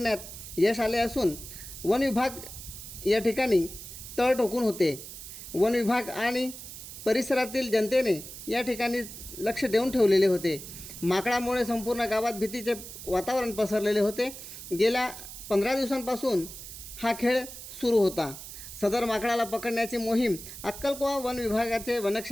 यश आले असून वन विभाग या ठिकाणी तळ ठोकून होते. वन विभाग आणि परिसरातील जनतेने या ठिकाणी लक्ष देऊन ठेवलेले होते. माकडामुळे संपूर्ण गावात भीतीचे वातावरण पसरलेले होते. गेल्या 15 दिवसांपासून हा खेळ सुरू होता. सदर माकडाला पकडण्याची मोहीम अक्कलकोवा वन विभागाचे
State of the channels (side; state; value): right; noise; hiss, 12 dB below the sound